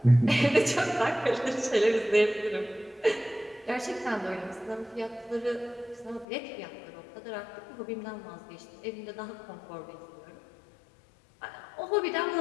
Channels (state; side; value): drops out; right; at 6.2 s